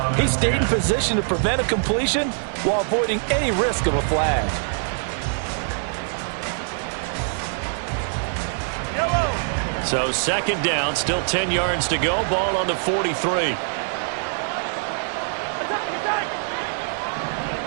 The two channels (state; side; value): silent; left; 63 dB below the other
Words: he stayed in position to prevent a completion while avoiding any risk of a flag. So second down, still 10 yards to go. Ball on the 43.